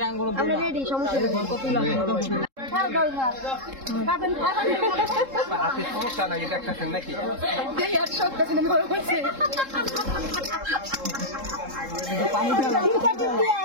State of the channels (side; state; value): left; late; 3.7 ms